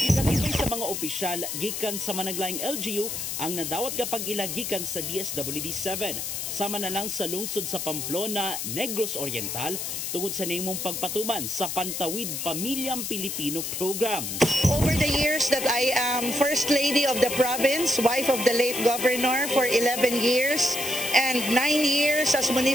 sa mga opisyal gikan sa managlaing LGU ang nadawat kapag ilagikan sa DSWD-7. Sama na lang sa lungsod sa Pamplona, Negros Oriental tungod sa nimong pagpatuman sa Pantawid Pamilyang Pilipino Program. Over the years that I am First Lady of the province, wife of the late Governor for 11 years, and 9 years as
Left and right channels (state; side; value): noise; left; hiss, 4 dB below the sound